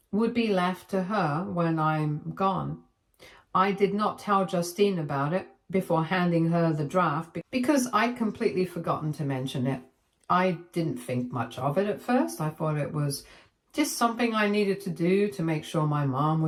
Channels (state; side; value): identical; both; correlation 1.00